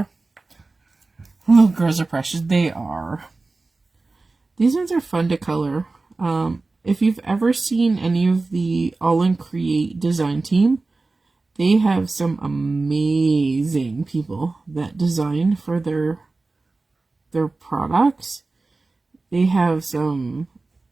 Oh, girls are precious. They are. These ones are fun to color. If you've ever seen any of the Aall Create design team, they have some amazing people that design for their products. They have some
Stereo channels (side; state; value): left; quieter; 3.5 dB